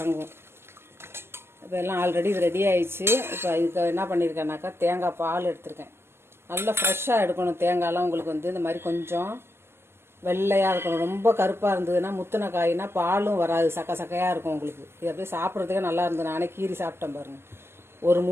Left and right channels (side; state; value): left; late; 0.12 ms